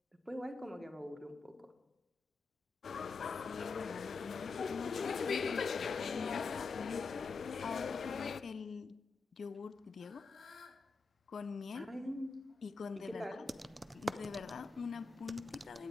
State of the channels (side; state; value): right; quieter; 4.4 dB